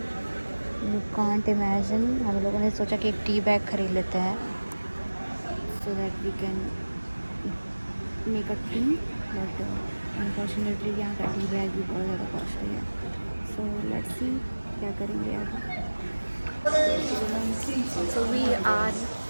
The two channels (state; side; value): inverted; both; correlation -1.00